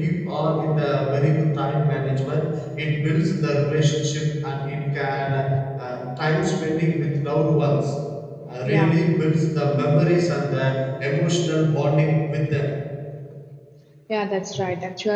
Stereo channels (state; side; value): identical; both; correlation 1.00